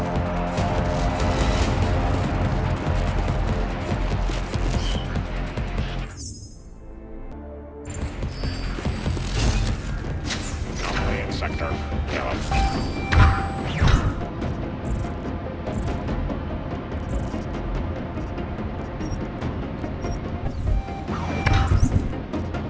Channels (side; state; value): both; identical; correlation 1.00